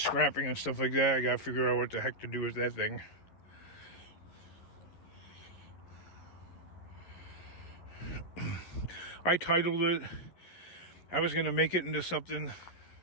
and stuff like that, I gotta figure out what the heck to do with that thing. I titled it, I was gonna make it into something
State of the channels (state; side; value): late; right; 11 ms